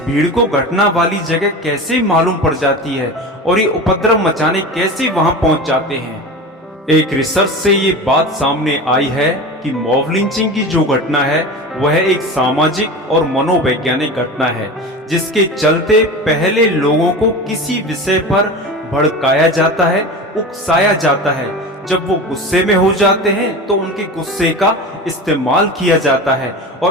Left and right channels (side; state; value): both; normal; correlation 0.30